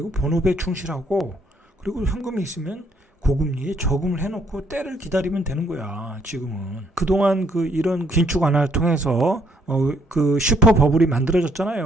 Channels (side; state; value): both; normal; correlation 0.68